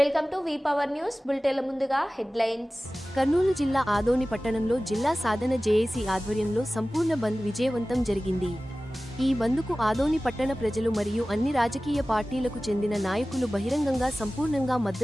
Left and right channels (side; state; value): both; normal; correlation 0.97